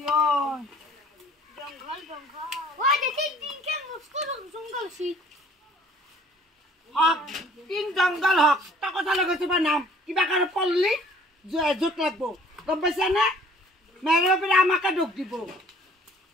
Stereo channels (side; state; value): both; normal; correlation 0.54